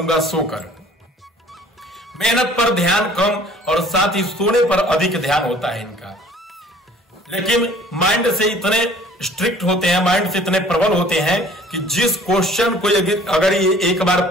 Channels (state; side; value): normal; both; correlation 0.52